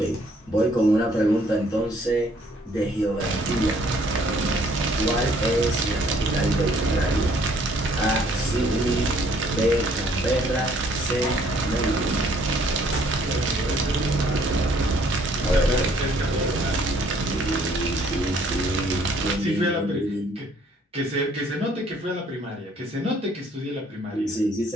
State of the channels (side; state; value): both; normal; correlation 0.62